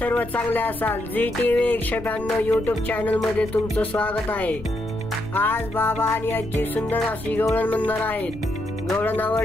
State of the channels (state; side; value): noise; left; rumble, 15 dB below the sound